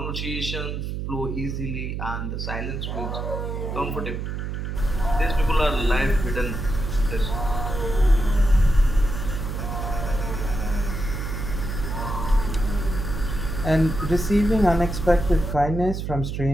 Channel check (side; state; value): right; noise; hum, 4 dB below the sound